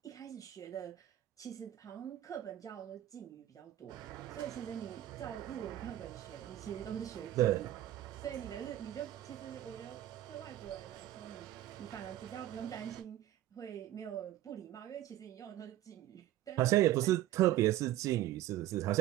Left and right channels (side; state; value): left; quieter; 13.8 dB